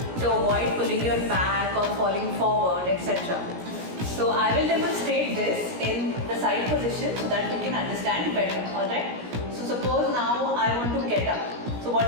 to avoid pulling your back or falling forward, etc. So I will demonstrate this in the side position so that you can understand better. Alright? So suppose now I want to get up. So what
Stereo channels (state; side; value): late; left; 17 ms